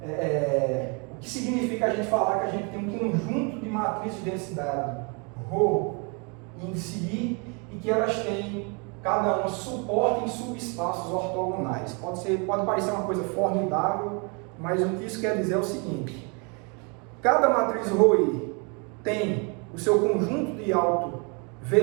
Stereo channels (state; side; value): quieter; left; 33.7 dB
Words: o que significa a gente falar que a gente tem um conjunto de matrizes de densidade ρ, índice I, e que elas têm cada uma suporte em subespaços ortogonais. Pode parecer uma coisa formidável, mas o que isso quer dizer é o seguinte: cada matriz ρI tem o seu conjunto de